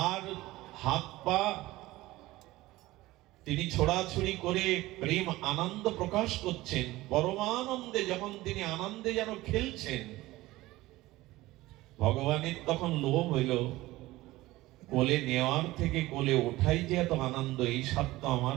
আর হাত পা তিনি ছোড়াছুড়ি করে প্রেম আনন্দ প্রকাশ করছেন, পরমানন্দে যখন তিনি আনন্দে যেন খেলছেন, ভগবানের তখন লোভ হইল, কোলে নেওয়ার থেকে কোলে ওঠাই যে এত আনন্দ, এই স্বাদ তো আমার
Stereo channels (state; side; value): quieter; left; 18.2 dB